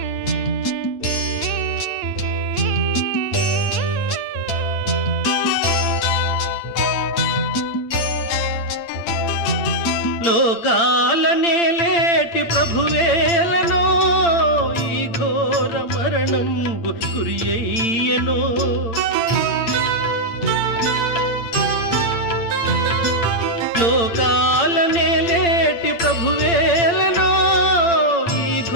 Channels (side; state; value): right; late; 8.8 ms